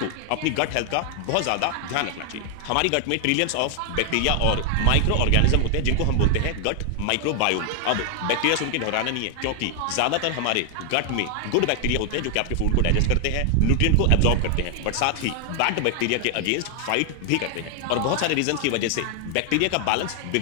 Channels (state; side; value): different; both; correlation 0.00